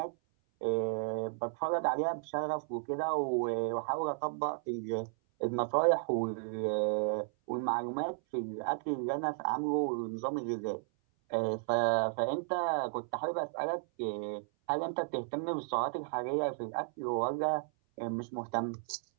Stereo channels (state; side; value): silent; left; 55 dB below the other